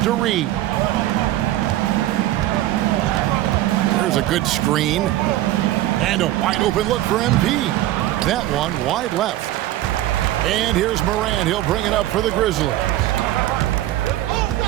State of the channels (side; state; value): left; quieter; 14.8 dB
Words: Reed. There's a good screen. And a wide open look for MP. That one wide left. And here's Morant. He'll bring it up for the Grizzlies.